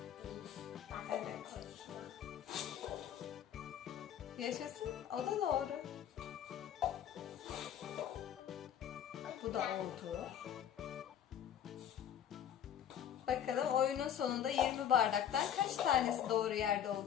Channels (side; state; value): right; quieter; 9.8 dB